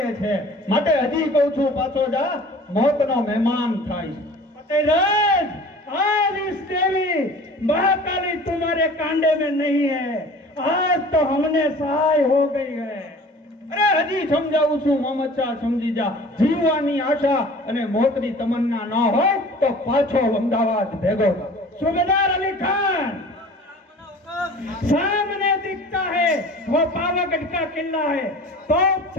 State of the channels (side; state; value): both; normal; correlation 0.44